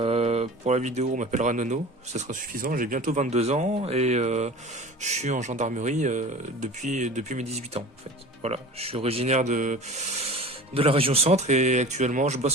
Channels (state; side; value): normal; both; correlation 0.38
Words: Pour la vidéo, on m'appellera Nono, ce sera suffisant. J'ai bientôt 22 ans et je suis en gendarmerie depuis mes 18 ans en fait. Voilà, je suis originaire de la région centre et actuellement je